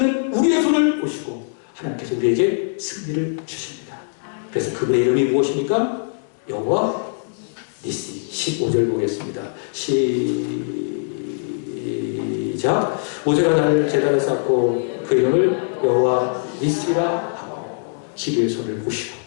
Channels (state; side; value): silent; right; digital silence